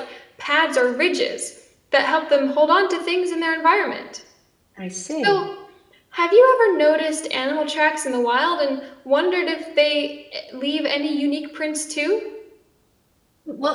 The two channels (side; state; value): both; identical; correlation 1.00